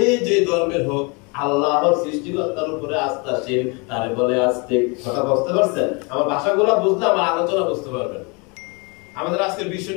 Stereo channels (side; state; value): right; quieter; 30.9 dB